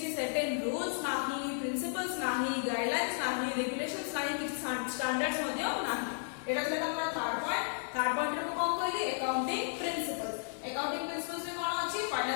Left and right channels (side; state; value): right; silent; digital silence